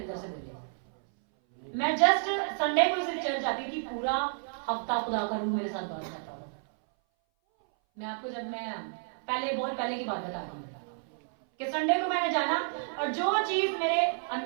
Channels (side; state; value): left; silent; 57 dB below the other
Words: से बोले। मैं जस्ट संडे को सिर्फ चर्च जाती थी, पूरा हफ्ता खुदा का रूह मेरे साथ बात करता था। मैं आपको जब मैं बहुत पहले की बात बता रही हूँ कि संडे को मैंने जाना, और जो चीज मेरे